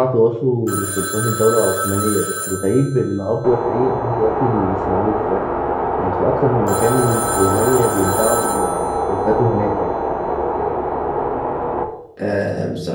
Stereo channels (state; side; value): identical; both; correlation 1.00